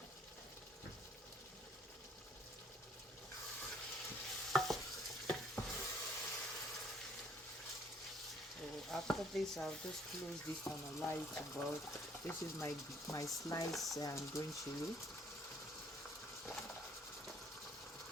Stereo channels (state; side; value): normal; both; correlation 0.63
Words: After this, I'll just close this and allow it to boil. This is my sliced green chili.